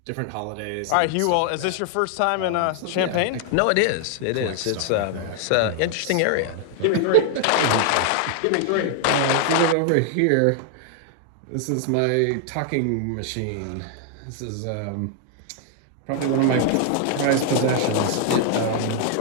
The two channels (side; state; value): both; different; correlation 0.00